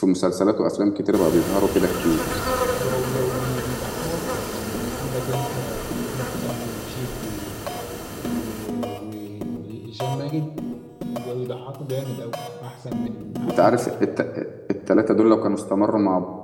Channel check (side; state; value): both; identical; correlation 1.00